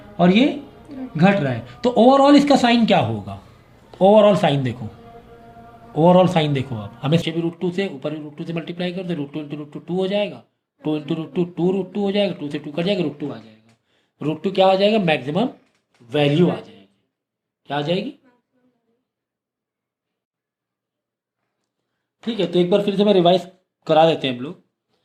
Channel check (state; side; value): identical; both; correlation 1.00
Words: और ये घट रहा है, तो ओवरऑल इसका साइन क्या होगा, ओवरऑल साइन देखो, ओवरऑल साइन देखो, आप हमें भी √2 से ऊपर भी √2 से मल्टीप्लाई कर दो, √2 × √2 हो जाएगा, 2 × √2 2√2 हो जाएगा, 2 से 2 कट जाएगा, √2 आ जाएगा, √2 क्या आ जाएगा, मैक्सिमम वैल्यू आ जाएगी, क्या आ जाएगी, ठीक है। तो एक बार फिर से मैं रिवाइज करा देते हैं हम लोग,